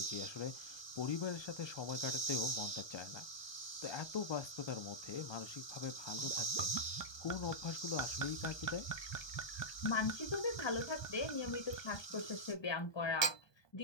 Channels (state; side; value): late; right; 1.2 ms